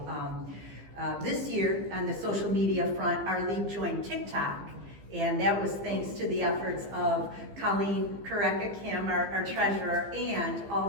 this year on the social media front, our league joined TikTok. And that was thanks to the efforts of Colleen Kareka Kim, our treasurer, and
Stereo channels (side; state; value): left; late; 15 ms